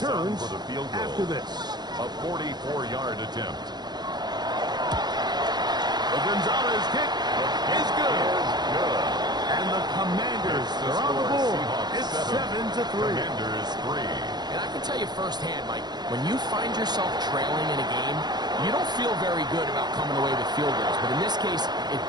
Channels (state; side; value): late; left; 0.20 ms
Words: for the field goal. after this. A 44-yard attempt. The Gonzalez kick is good. And the Commanders are on the board. It's 7-3. Commanders 3. And I can tell you firsthand, Mike, when you find yourself trailing in a game, you don't feel very good about coming away with field goals. But in this case, it